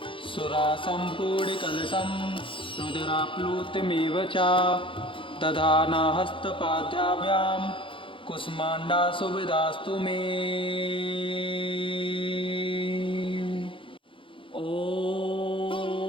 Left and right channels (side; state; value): right; late; 0.25 ms